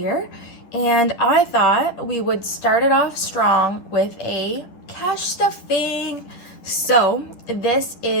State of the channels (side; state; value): right; late; 10 ms